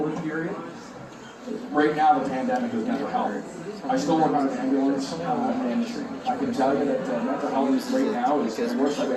period. Right now, the pandemic is mental health. I still work on an ambulance, and I can tell you that mental health right now is the worst I've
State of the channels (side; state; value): both; identical; correlation 1.00